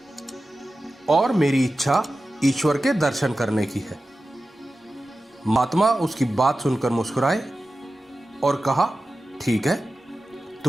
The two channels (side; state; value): both; normal; correlation 0.94